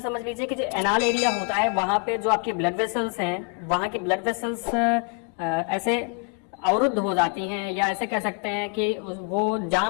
लीजिए कि जो एनाल एरिया होता है वहां पे जो आपके ब्लड वेसल्स हैं, वहां के ब्लड वेसल्स ऐसे अवरुद्ध हो जाती हैं या ऐसे कह सकते हैं कि वो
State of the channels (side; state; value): right; quieter; 35.7 dB